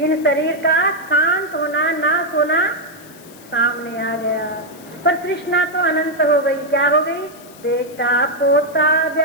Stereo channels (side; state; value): left; noise; hiss, 22 dB below the sound